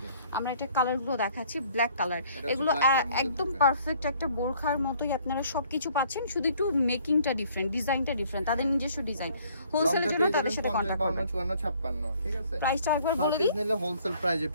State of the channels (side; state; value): both; inverted; correlation -0.59